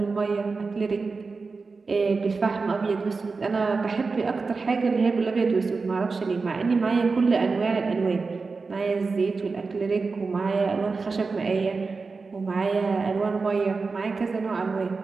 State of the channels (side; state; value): left; quieter; 4.3 dB